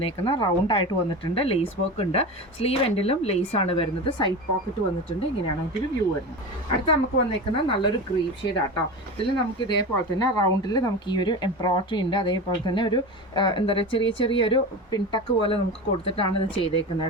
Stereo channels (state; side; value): normal; both; correlation 0.27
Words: റൗണ്ട് ആയിട്ട് വന്നിട്ടുണ്ട്. ലേസ് വർക്ക് ഉണ്ട്. സ്ലീവ് എൻഡിലും ലേസ് ആണ് വരുന്നത്. സൈഡ് പോക്കറ്റ് വന്നിട്ടുണ്ട്. ഇങ്ങനെയാണ് ഇതിൽ വ്യൂ വരുന്നത്. അടുത്ത നമുക്ക് വന്നേക്കുന്നത് നല്ലൊരു ഗ്രീൻ ഷെയ്ഡ് ആട്ടോ. ഇതിൽ നമുക്ക് ഇതേപോലെ തന്നെ റൗണ്ടിൽ നമുക്ക് ഈ ഒരു എംബ്രോയിഡറി ഉണ്ട്. അതേപോലെ തന്നെ ഒരു എന്താ പറയുക ചെറിയൊരു പിൻടക്ക് പോലെ നമുക്ക് കൊടുത്തിട്ടാണ് ഇത് ചെയ്തേക്കുന്നത്